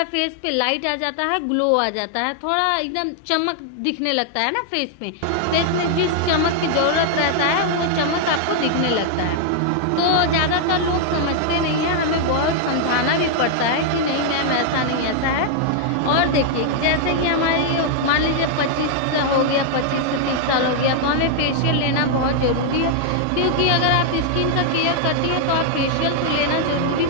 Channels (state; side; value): different; both; correlation 0.00